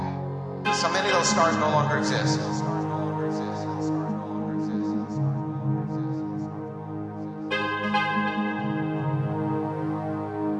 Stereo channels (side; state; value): both; identical; correlation 1.00